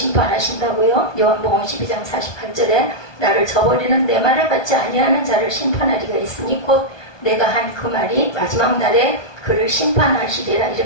요한복음 12장 48절에 나를 저버리는 내 말을 받지 아니하는 자를 심판하리가 있으니 곧 내가 한 그 말이 마지막 날에 그를 심판하시리라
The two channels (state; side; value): late; right; 1.2 ms